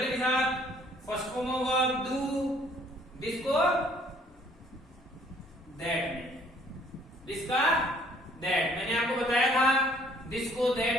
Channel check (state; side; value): normal; both; correlation 0.60